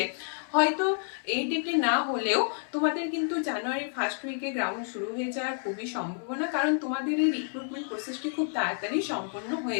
হয়তো এই ডেটে না হলেও তোমাদের কিন্তু জানুয়ারি ফার্স্ট উইকে গ্রাউন্ড শুরু হয়ে যাওয়ার খুবই সম্ভাবনা, কারণ তোমাদের এই রিক্রুটমেন্ট প্রসেসটি খুব তাড়াতাড়ি সম্পন্ন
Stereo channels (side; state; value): right; silent; 58 dB below the other